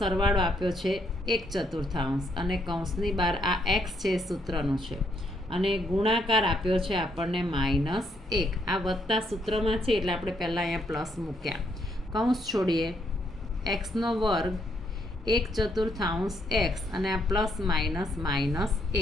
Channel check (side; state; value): both; normal; correlation 0.73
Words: આપ્યો છે 1/4 અને કૌંસની બહાર આ એક્સ છે સૂત્રનો છે, અને ગુણાકાર આપ્યો છે આપણને -1. આ વત્તા સૂત્રમાં છે એટલે આપણે પહેલાં અહીંયા પ્લસ મૂક્યા. કૌંસ છોડીએ, એક્સનો વર્ગ 1/4 એક્સ અને આ પ્લસ